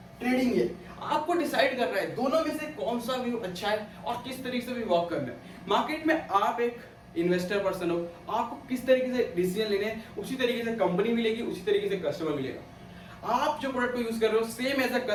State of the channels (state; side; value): identical; both; correlation 1.00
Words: ट्रेडिंग है, आपको डिसाइड करना है दोनों में से कौन सा व्यू अच्छा है और किस तरीके से भी वर्क करना है। मार्केट में आप एक इन्वेस्टर पर्सन हो, आपको किस तरीके से डिसीजन लेने हैं, उसी तरीके से कंपनी मिलेगी, उसी तरीके से कस्टमर मिलेगा। आप जो प्रोडक्ट को यूज कर रहे हो, सेम एज अ